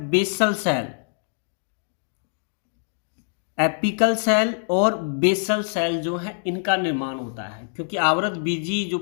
बेसल सेल। एपिकल सेल और बेसल सेल जो है इनका निर्माण होता है, क्योंकि आवृत बीजी जो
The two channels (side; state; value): right; silent; digital silence